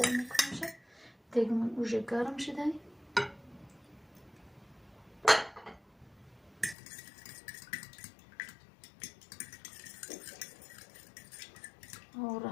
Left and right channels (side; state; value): right; drops out; at 6.8 s